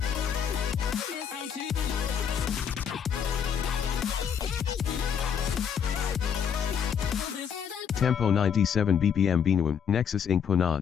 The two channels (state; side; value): quieter; right; 7.7 dB